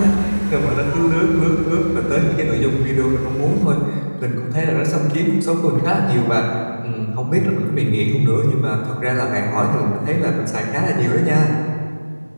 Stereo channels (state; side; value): inverted; both; correlation -1.00